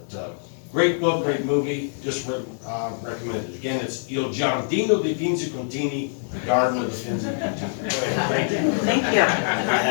great book, great movie, just recommended. Again, it's Il Giardino dei Finzi Contini, the garden of the Finzi Contini. Thank you. Thank you. I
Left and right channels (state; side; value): silent; right; digital silence